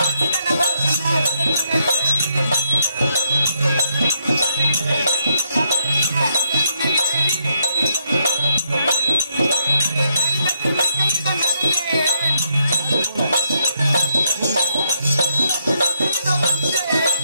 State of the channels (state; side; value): inverted; both; correlation -0.76